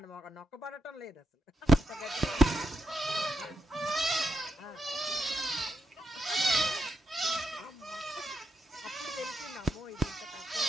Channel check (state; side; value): normal; both; correlation 0.83